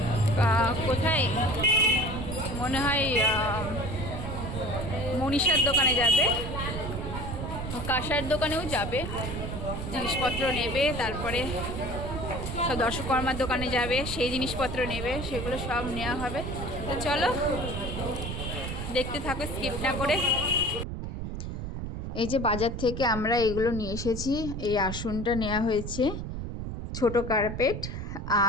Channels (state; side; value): noise; right; rumble, 5 dB below the sound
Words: কোথায়, মনে হয় মনীষার দোকানে যাবে, কাঁসার দোকানেও যাবে, জিনিসপত্র নেবে, তারপরে সব দর্শকর্মার দোকানে যাবে, সেই জিনিসপত্র নেবে, সেগুলো সব নেওয়া হবে। তো চলো দেখতে থাকো স্কিপ না করে। এই যে বাজার থেকে আমরা এগুলো নিয়ে এসেছি, এই আসনটা নেওয়া হয়েছে, ছোট কার্পেট,